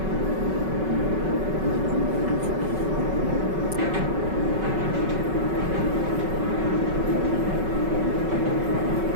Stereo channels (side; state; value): left; late; 5.3 ms